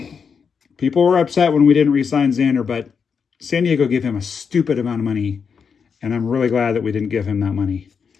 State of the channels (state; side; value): quieter; right; 6.2 dB